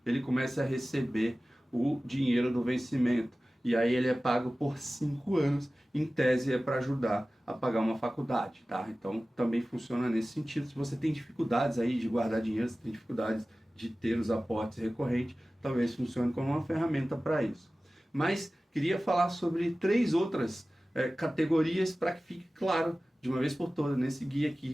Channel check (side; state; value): both; normal; correlation 0.97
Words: ele comece a receber o dinheiro do vencimento. E aí ele é pago por 5 anos, em tese é para ajudar a pagar uma faculdade, tá? Então também funciona nesse sentido. Se você tem dificuldades aí de guardar dinheiro, se tem dificuldades de ter os aportes recorrentes, talvez funcione como uma ferramenta para isso. Mas queria falar sobre 3 outras categorias para que fique claro de uma vez por todas nesse guia